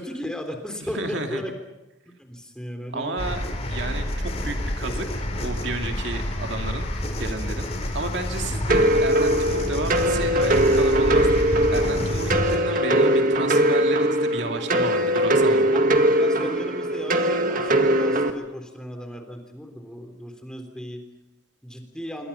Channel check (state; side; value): normal; both; correlation 0.35